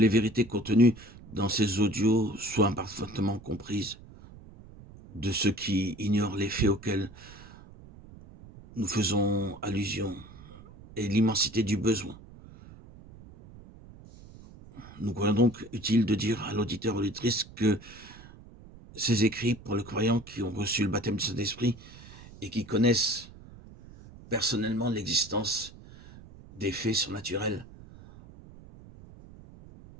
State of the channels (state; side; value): noise; right; rumble, 19 dB below the sound